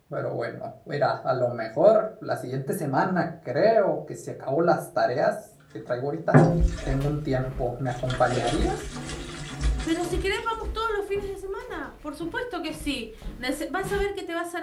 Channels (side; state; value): both; identical; correlation 1.00